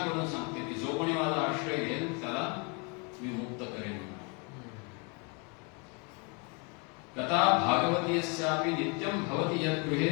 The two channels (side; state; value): right; quieter; 32.1 dB